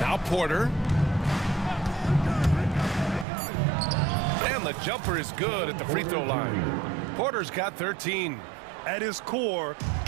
Porter. And the jumper is good at the free throw line. Porter's got 13. At his core,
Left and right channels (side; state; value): left; drops out; at 3.2 s